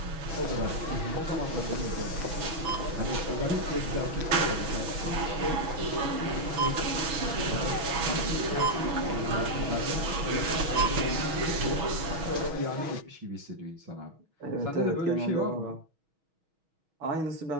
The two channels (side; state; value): left; late; 6.3 ms